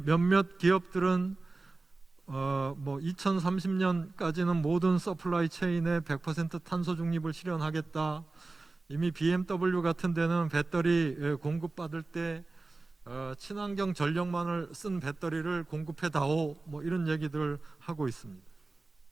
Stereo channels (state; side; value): quieter; left; 3.4 dB